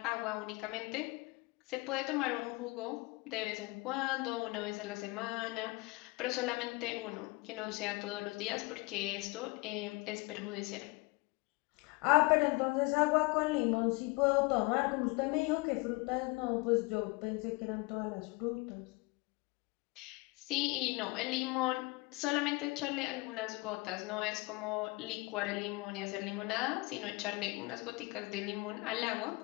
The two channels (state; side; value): quieter; right; 25.2 dB